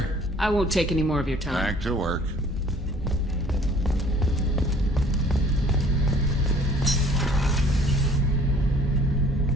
I won't take any more of your time. Back to work.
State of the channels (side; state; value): both; normal; correlation 0.54